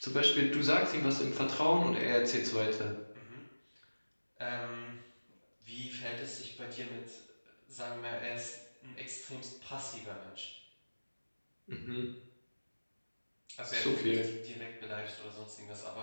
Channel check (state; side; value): inverted; both; correlation -1.00